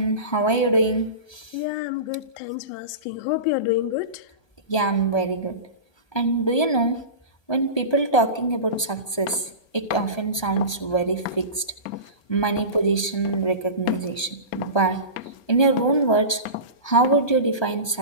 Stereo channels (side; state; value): right; late; 1.2 ms